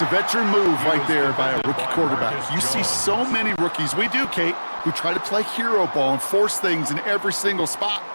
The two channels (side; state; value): both; inverted; correlation -1.00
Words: a veteran move right there by a rookie quarterback. You see so many rookies, we do, Kate, who try to play hero ball and force things in every single spot.